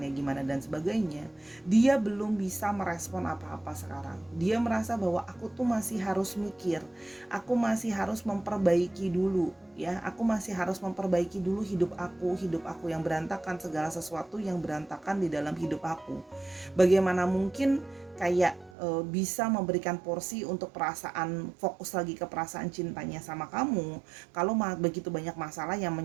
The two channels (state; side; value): drops out; left; at 18.7 s